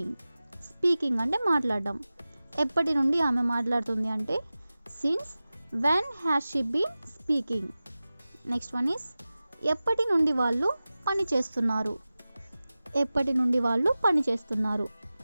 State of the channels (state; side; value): inverted; both; correlation -0.96